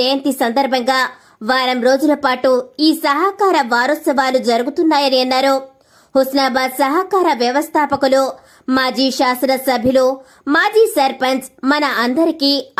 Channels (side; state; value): both; identical; correlation 1.00